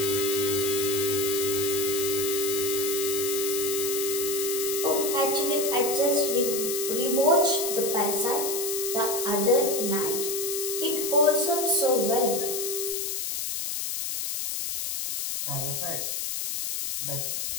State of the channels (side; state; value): left; noise; hiss, 2 dB below the sound